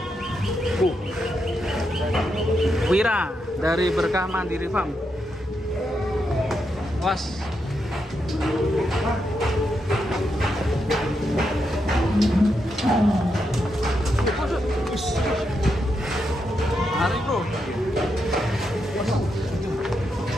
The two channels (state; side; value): normal; both; correlation 0.83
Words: Wira dari Berkah Mandiri Farm. Was. Mari bro.